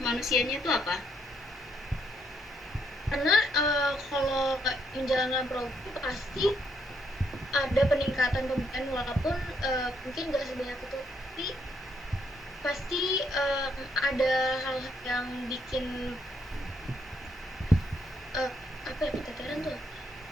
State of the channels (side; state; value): both; normal; correlation 0.73